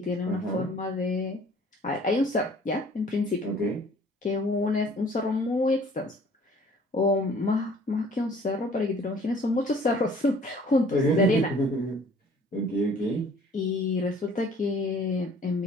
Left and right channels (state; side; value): normal; both; correlation 0.53